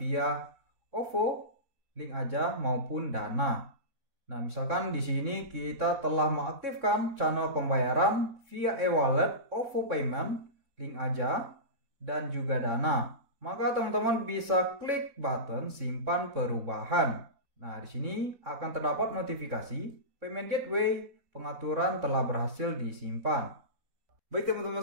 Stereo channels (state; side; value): late; left; 3.6 ms